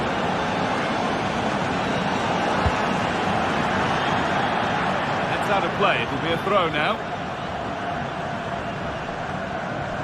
That's out of play. It'll be a throw now.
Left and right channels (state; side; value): identical; both; correlation 1.00